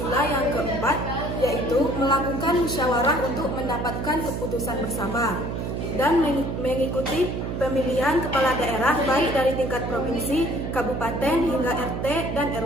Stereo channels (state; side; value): noise; right; hum, 3 dB below the sound